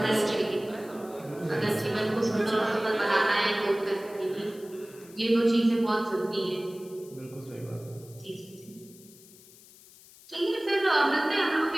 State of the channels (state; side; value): noise; left; hiss, 23 dB below the sound